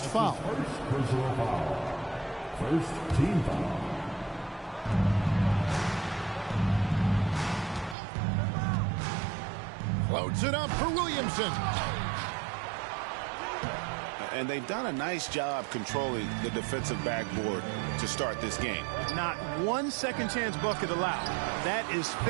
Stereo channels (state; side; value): drops out; left; at 8.0 s